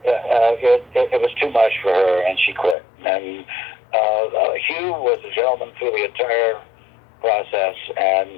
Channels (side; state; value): right; drops out; at 2.8 s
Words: it was too much for her, and she quit. And Hugh was a gentleman through the entire process,